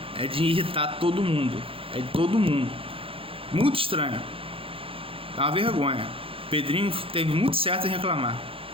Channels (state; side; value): late; left; 0.27 ms